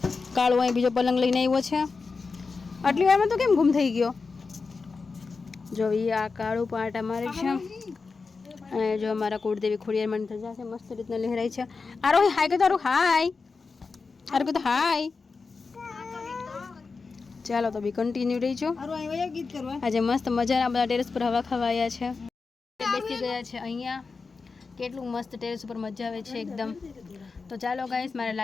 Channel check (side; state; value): right; quieter; 4.5 dB